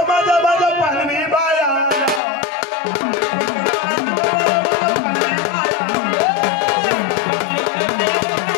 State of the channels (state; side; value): drops out; right; at 2.2 s